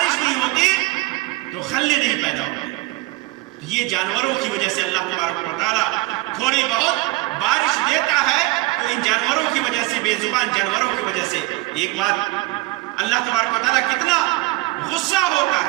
نہیں ہوتی تو خلے نہیں پیدا ہوتے. یہ جانوروں کی وجہ سے اللہ تبارک و تعالیٰ تھوڑی بہت بارش دیتا ہے، تو ان جانوروں کی وجہ سے، بے زبان جانوروں کی وجہ سے. ایک بات، اللہ تبارک و تعالیٰ کتنا غصہ ہوتا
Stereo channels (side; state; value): left; quieter; 20.4 dB